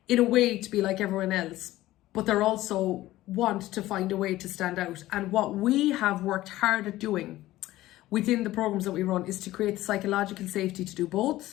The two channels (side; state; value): right; quieter; 16.0 dB